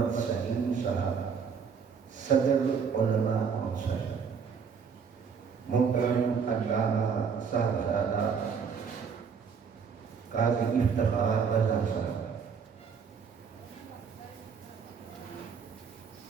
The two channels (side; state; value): left; quieter; 6.3 dB